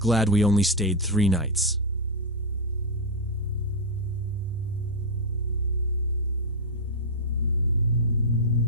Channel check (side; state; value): both; normal; correlation 0.00